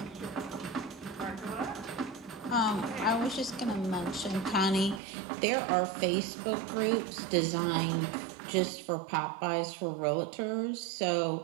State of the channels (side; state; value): left; drops out; at 5.0 s